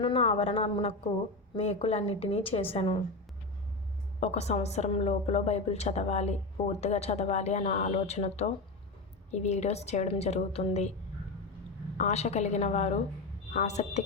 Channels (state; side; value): quieter; right; 3.2 dB